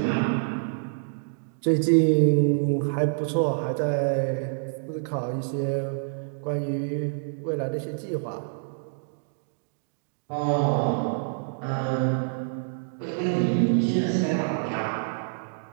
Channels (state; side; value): silent; left; digital silence